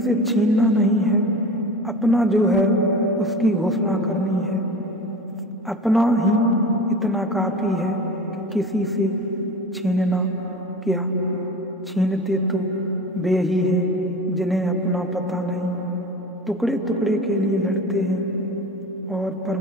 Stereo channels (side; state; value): both; normal; correlation 0.35